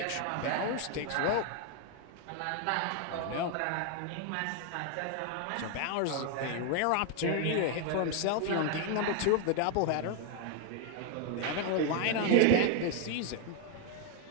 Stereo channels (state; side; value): different; both; correlation 0.00